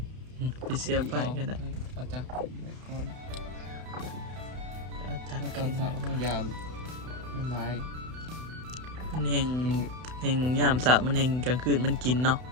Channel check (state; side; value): late; left; 32 ms